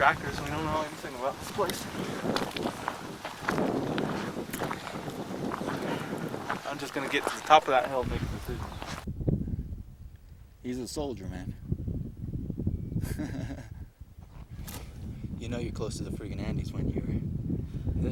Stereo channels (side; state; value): both; identical; correlation 1.00